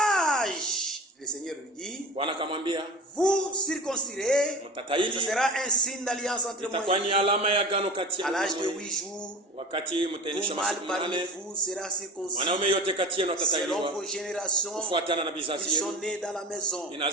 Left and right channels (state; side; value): normal; both; correlation 0.32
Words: le Seigneur lui dit, Bwana akamwambia vous circoncirez, ce mtataili, sera un signe d'alliance entre moi itakuwa et ni vous. alama ya agano kati À yangu na l'âge de wewe. 8 jours, Wakati mtaendesha tout mâle masiku parmi 8, vous sera circoncis mwanaume yote kati yenu selon atatailiwa vos générations. kufuatana na vizazi Ils sont yenu. nés dans la maison,